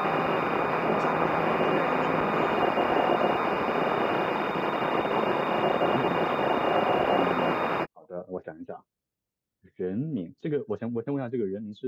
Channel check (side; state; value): both; identical; correlation 1.00